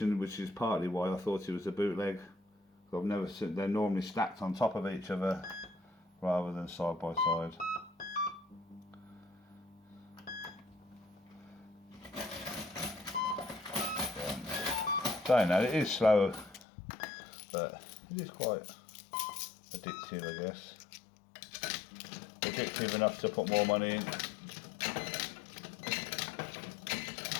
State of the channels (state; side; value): drops out; right; at 16.7 s